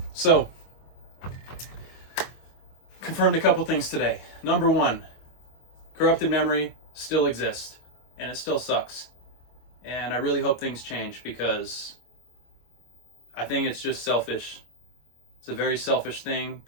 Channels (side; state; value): right; late; 25 ms